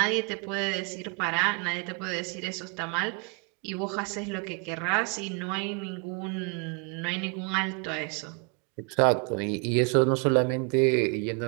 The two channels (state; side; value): quieter; left; 34.0 dB